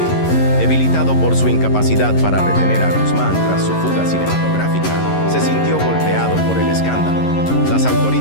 debilitado por su incapacidad para retener a Guzmán tras su fuga cinematográfica, se sintió golpeado por el escándalo. Las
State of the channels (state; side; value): late; right; 11 ms